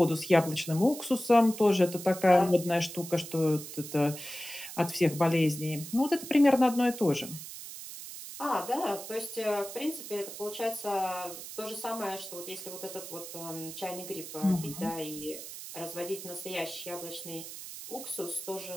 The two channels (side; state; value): right; noise; hiss, 11 dB below the sound